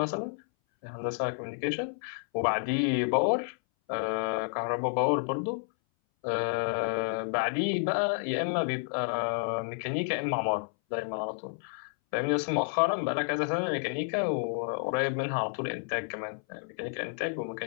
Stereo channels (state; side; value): silent; right; 58 dB below the other